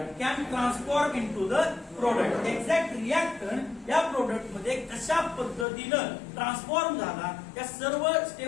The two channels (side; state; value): right; drops out; at 5.7 s